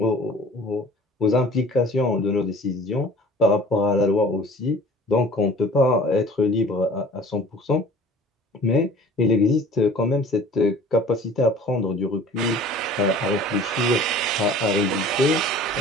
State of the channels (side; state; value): both; normal; correlation 0.46